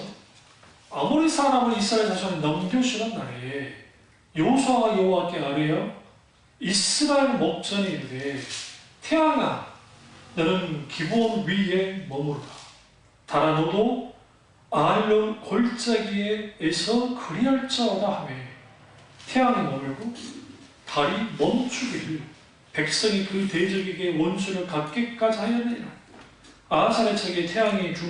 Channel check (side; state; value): both; identical; correlation 1.00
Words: 아모리 사람을 이스라엘 자손에 넘겨주는 날에 여호수아가 여호와께 아뢰어 이스라엘 목전에 이르되 태양아 너는 기브온 위에 머무르라. 달아 너도 아알론 골짜기에서 그리할지어다 하며 태양이 머물고 달이 멈추기를 백성이 그 대적에게 원수를 갚기까지 하였느니라. 아하살의 책에 태양이